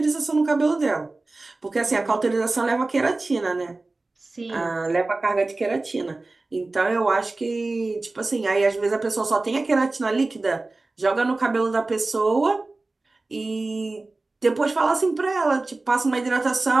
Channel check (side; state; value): left; quieter; 3.3 dB